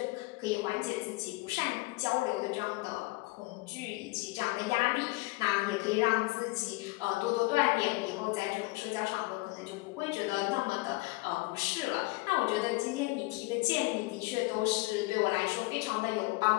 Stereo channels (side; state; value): right; quieter; 23.2 dB